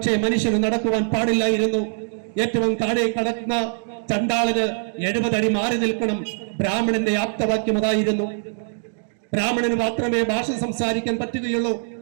മനുഷ്യന് നടക്കുവാൻ പാടില്ലായിരുന്നു. ഏറ്റവും താഴെ കടക്കുന്ന ചണ്ടാളന് 70 അടി മാറി നിൽക്കണം. ബ്രാഹ്മണന്റെ ആപ്തവാക്യം അതായിരുന്നു. ബ്രാഹ്മണന് മാത്രമേ ഭാഷ സംസാരിക്കാൻ പറ്റുകയുള്ളൂ.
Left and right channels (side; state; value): left; silent; digital silence